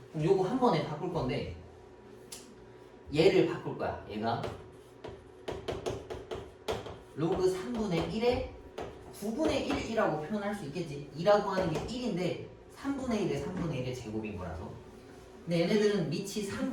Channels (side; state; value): both; identical; correlation 1.00